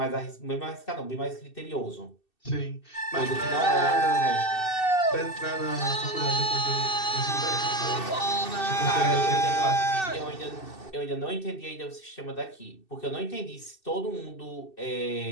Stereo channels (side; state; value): right; late; 2.6 ms